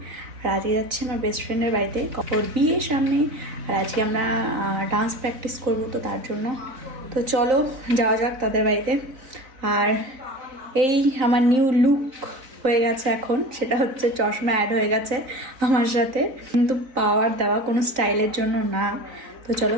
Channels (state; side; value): late; left; 3.8 ms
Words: আর আজকে যাচ্ছি আমার বেস্ট ফ্রেন্ডের বাড়িতে, ওর বিয়ের সামনে। আর আজকে আমরা ডান্স প্র্যাকটিস করব, তো তার জন্য তো চলো যাওয়া যাক তাদের বাড়িতে। আর এই আমার নিউ লুক হয়ে গেছে এখন, সেটা হচ্ছে চশমা অ্যাড হয়ে গেছে আমার সাথে, কিন্তু পাওয়ার দেওয়া কোনো স্টাইলের জন্য না। তো চলো